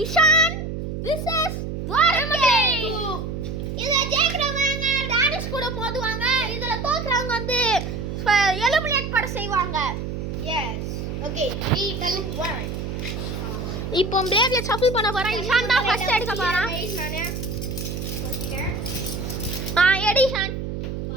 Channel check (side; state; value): right; noise; hum, 5 dB below the sound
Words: இஷான் vs துவாரகேஷ். இதுல ஜெயிக்கிறவங்க டானிஸ் கூட மோதுவாங்க. இதுல தோக்குறவங்க வந்து எலிமினேட் பண்ண செய்வாங்க. S okay 3 2 1. இப்போ பிளேட்ல ஷஃபிள் பண்ண போறேன். இஷான் தான் ஃபர்ஸ்ட் எடுக்க போறான். நானே சொல்லிட்டேன். எடிஷன்